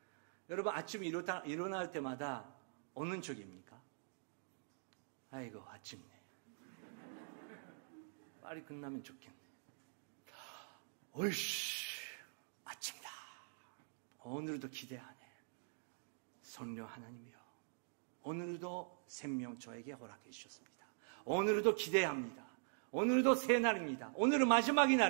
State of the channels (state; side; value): silent; left; digital silence